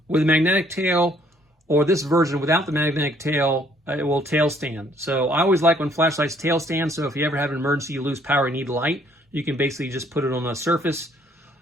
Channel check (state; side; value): normal; both; correlation 0.64